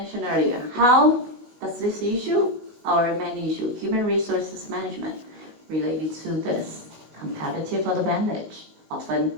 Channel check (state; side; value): late; left; 19 ms